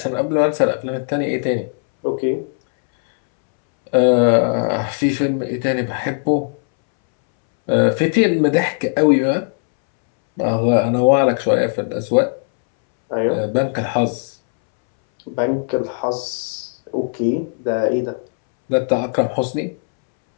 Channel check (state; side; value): silent; right; 66 dB below the other